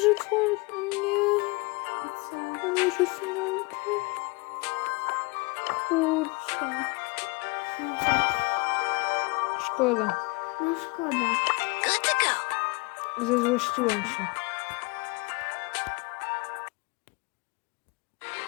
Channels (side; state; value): right; quieter; 27.5 dB